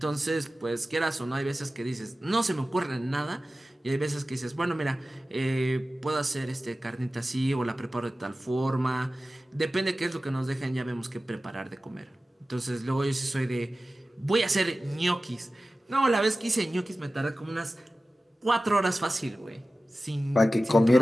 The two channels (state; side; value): normal; both; correlation 0.95